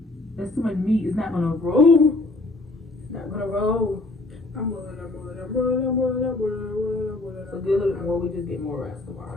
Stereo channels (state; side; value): quieter; right; 3.0 dB